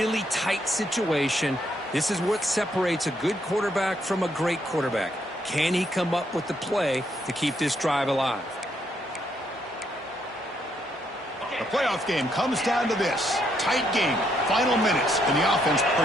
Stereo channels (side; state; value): both; normal; correlation 0.74